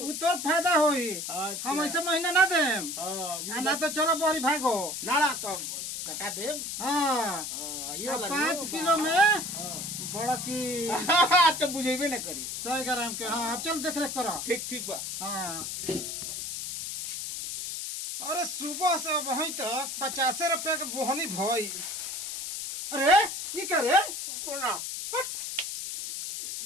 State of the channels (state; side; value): noise; left; hiss, 5 dB below the sound